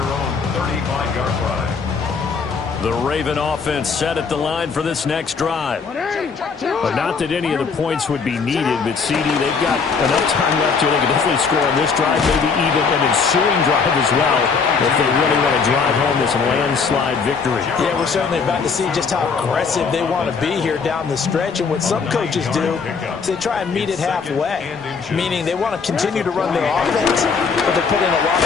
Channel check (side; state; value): right; quieter; 5.3 dB